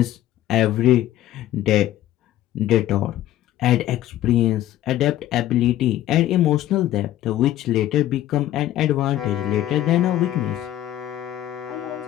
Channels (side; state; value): right; quieter; 13.4 dB